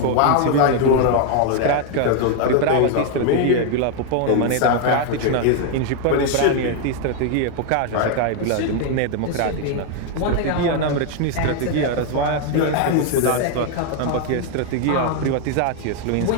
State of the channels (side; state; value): both; different; correlation 0.00